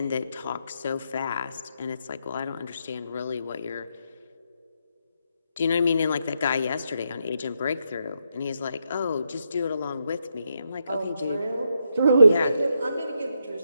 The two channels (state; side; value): inverted; both; correlation -0.81